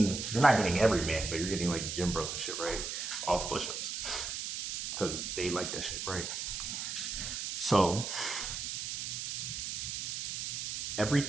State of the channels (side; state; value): right; noise; hiss, 4 dB below the sound